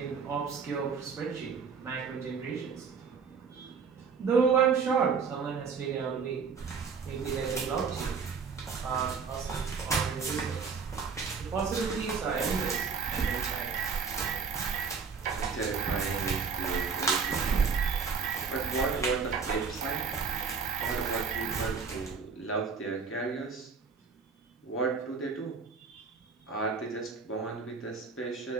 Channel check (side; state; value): left; quieter; 5.5 dB